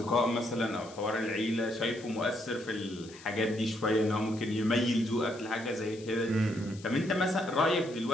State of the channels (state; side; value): noise; left; hiss, 20 dB below the sound